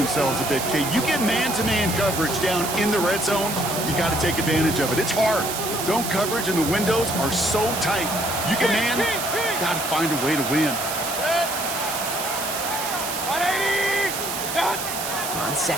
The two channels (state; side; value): noise; right; hiss, 5 dB below the sound